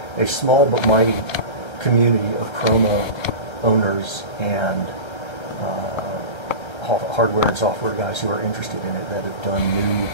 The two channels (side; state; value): right; late; 1.3 ms